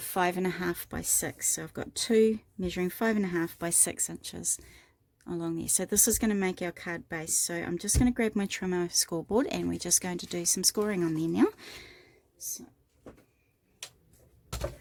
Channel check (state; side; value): identical; both; correlation 1.00